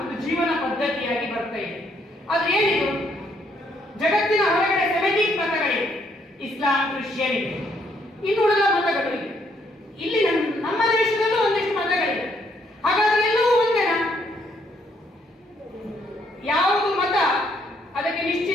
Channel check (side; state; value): both; normal; correlation 0.71